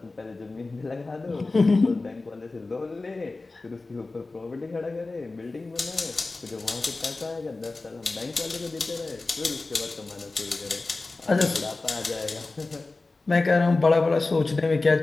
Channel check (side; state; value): right; quieter; 3.4 dB